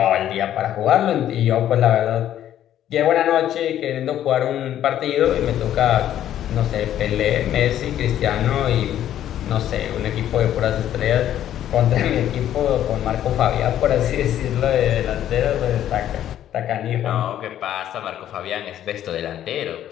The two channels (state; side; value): quieter; right; 11.4 dB